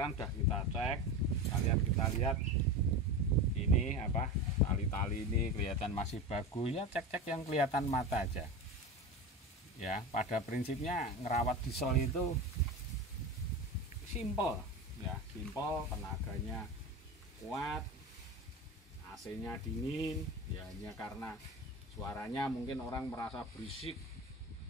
sudah kita cek, kalian kita lihat ini apa, tali-tali ini kelihatan masih bagus ya, cek-cek yang kelihatan mata aja ya. Pada prinsipnya ngerawat diesel itu simple ya, simple, tenaganya kuat AC-nya dingin, ya hanya karena suaranya mungkin orang merasa berisik,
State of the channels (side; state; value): both; normal; correlation 0.26